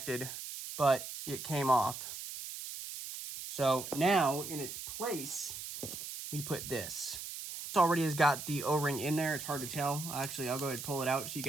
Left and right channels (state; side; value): noise; right; hiss, 8 dB below the sound